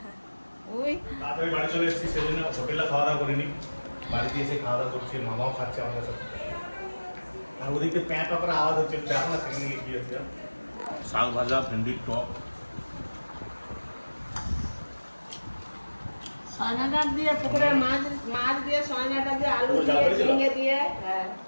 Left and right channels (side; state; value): both; inverted; correlation -1.00